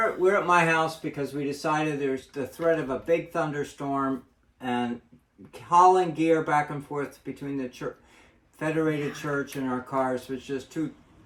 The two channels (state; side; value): identical; both; correlation 1.00